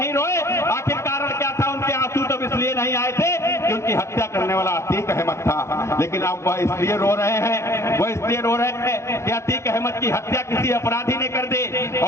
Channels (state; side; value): late; right; 0.13 ms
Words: रोए। आखिर कारण क्या था? उनके आंसू तब इसलिए नहीं आए थे कि उनकी हत्या करने वाला अतीक अहमद था। लेकिन अब वह इसलिए रो रहे हैं, वह इसलिए रो रहे हैं कि अतीक अहमद की हत्या किसी अपराधी ने कर दी।